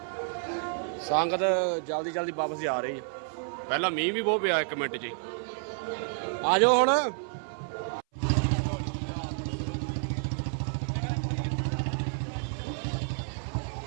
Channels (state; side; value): silent; left; 58 dB below the other